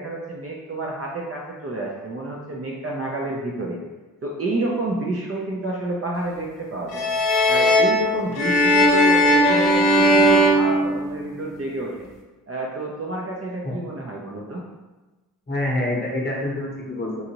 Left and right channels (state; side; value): normal; both; correlation 0.45